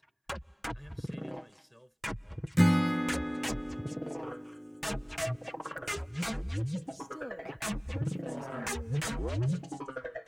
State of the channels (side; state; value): both; identical; correlation 1.00